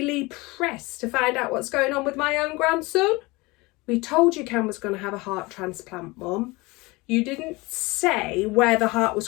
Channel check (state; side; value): quieter; right; 23.5 dB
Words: Press to find out what's going on with my own grandson?" "We told you Cam was going to have a heart transplant, Mum. You didn't say where the heart was